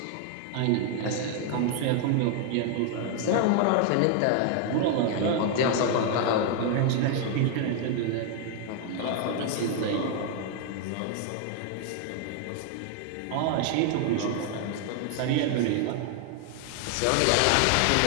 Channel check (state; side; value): different; both; correlation 0.00